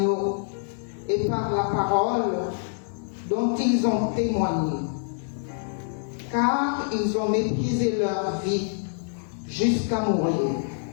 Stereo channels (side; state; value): right; silent; digital silence